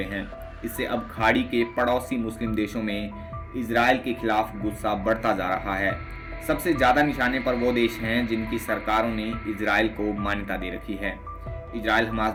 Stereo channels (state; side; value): identical; both; correlation 1.00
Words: हैं। इससे अब खाड़ी के पड़ोसी मुस्लिम देशों में इजराइल के खिलाफ गुस्सा बढ़ता जा रहा है। सबसे ज्यादा निशाने पर वो देश हैं जिनकी सरकारों ने इजराइल को मान्यता दे रखी है। इजराइल हमास